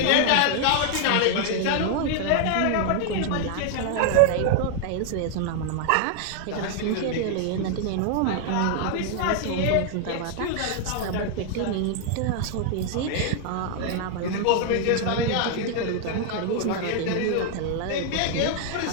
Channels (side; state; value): both; different; correlation 0.00